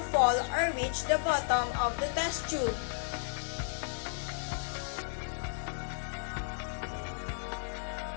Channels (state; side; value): silent; right; digital silence